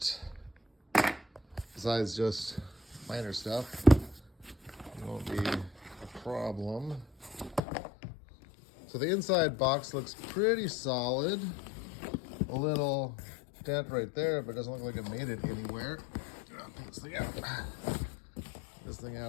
besides just minor stuff, it won't be a problem. So the inside box looks pretty solid. A little dent right there, but it doesn't look like it made it anywhere. I'll pull this thing out. This thing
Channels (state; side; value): drops out; right; at 7.6 s